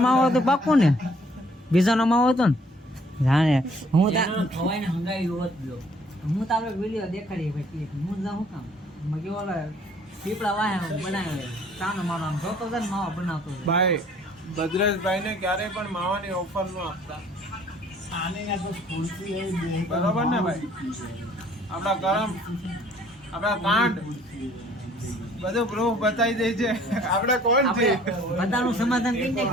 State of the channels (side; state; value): both; normal; correlation 0.58